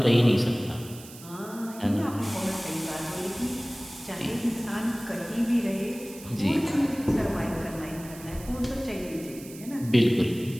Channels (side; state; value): right; noise; hiss, 17 dB below the sound